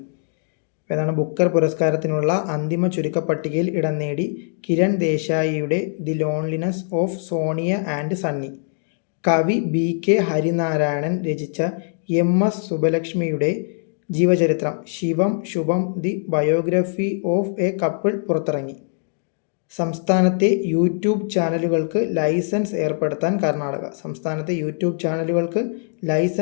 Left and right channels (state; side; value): silent; right; digital silence